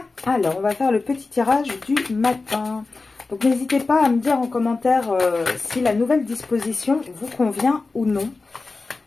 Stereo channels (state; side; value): quieter; right; 3.8 dB